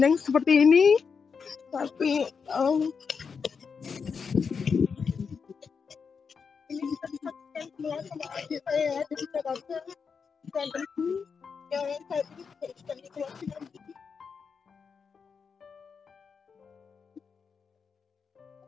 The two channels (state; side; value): quieter; right; 5.8 dB